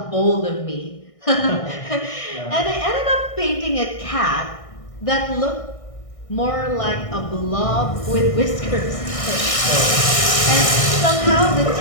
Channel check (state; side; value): late; right; 1.6 ms